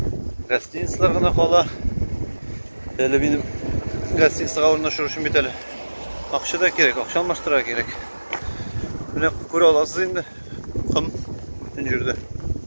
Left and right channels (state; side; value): inverted; both; correlation -1.00